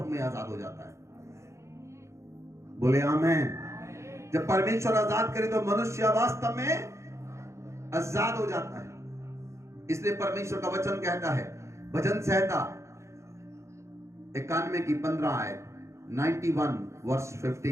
में आजाद हो जाता है। बोले आमेन। जब परमेश्वर आजाद करे तो मनुष्य वास्तव में आजाद हो जाता है। इसलिए परमेश्वर का वचन कहता है, भजन संहिता 91 की 15 आयत, 91 वर्स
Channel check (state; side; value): late; left; 0.14 ms